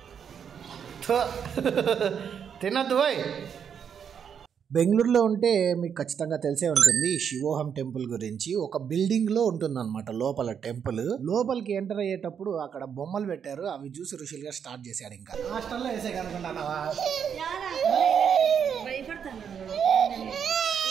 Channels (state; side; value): quieter; left; 7.6 dB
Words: తినద్దు బాయ్. బెంగళూరులో ఉంటే మీకు ఖచ్చితంగా తెలిసే ఉంటుంది శివోహం టెంపుల్ గురించి. ఒక బిల్డింగ్ లో ఉంటుందన్నమాట లోపల టెంపుల్. లోపలికి ఎంటర్ అయ్యేటప్పుడు అక్కడ బొమ్మలు పెట్టారు, అవి చూసి రుషిల్ గా స్టార్ట్ చేశాడు. ఇంకా హాస్టల్లో వేసే కనుకుంటున్నావా?